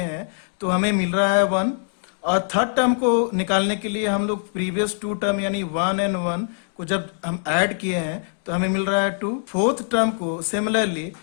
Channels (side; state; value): right; silent; digital silence